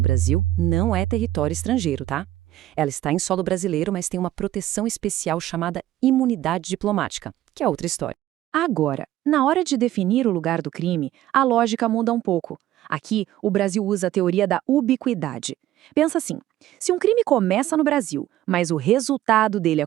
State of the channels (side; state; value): left; quieter; 14.0 dB